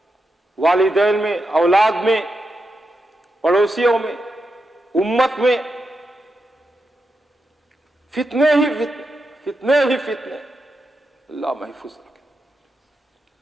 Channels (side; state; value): both; normal; correlation 0.86